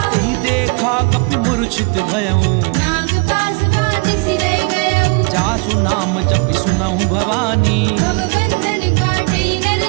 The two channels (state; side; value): quieter; left; 32.9 dB